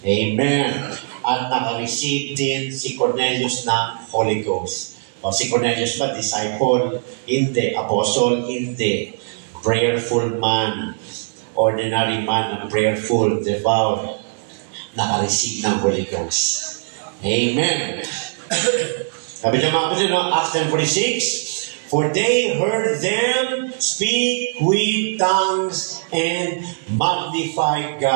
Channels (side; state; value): left; silent; digital silence